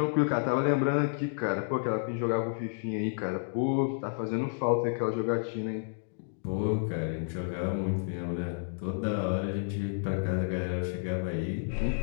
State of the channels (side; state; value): right; silent; digital silence